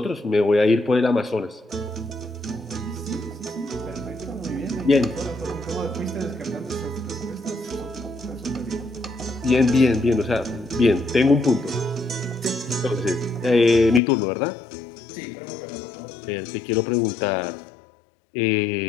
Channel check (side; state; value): right; drops out; at 14.0 s